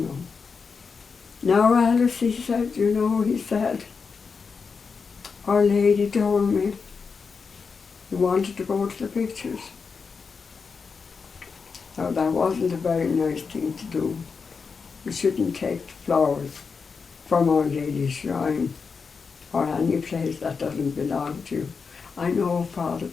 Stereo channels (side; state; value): right; quieter; 5.3 dB